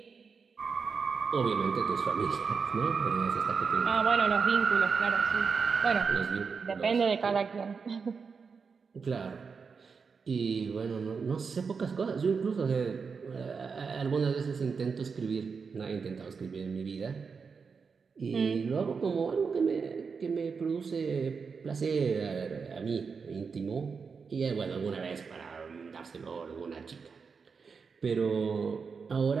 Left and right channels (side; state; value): left; quieter; 5.4 dB